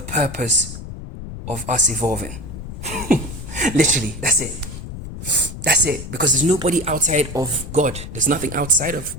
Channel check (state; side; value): noise; left; rumble, 10 dB below the sound